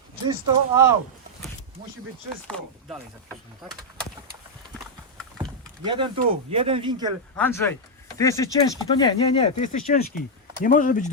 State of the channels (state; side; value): normal; both; correlation -0.03